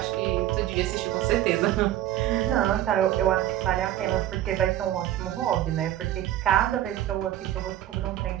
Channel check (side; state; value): left; quieter; 12.9 dB